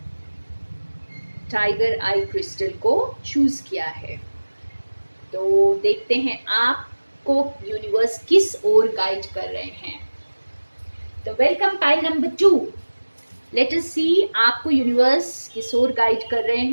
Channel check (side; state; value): both; inverted; correlation -1.00